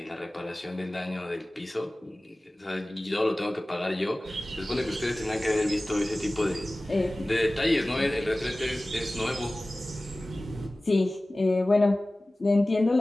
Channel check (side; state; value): both; normal; correlation 0.97